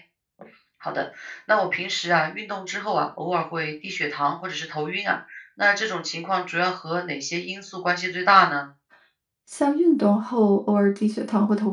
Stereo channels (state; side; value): identical; both; correlation 1.00